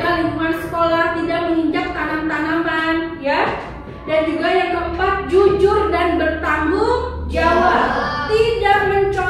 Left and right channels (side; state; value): both; identical; correlation 1.00